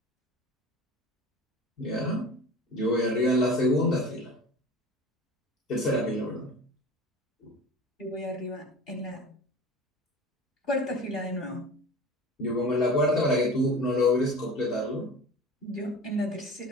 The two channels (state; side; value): normal; both; correlation 0.37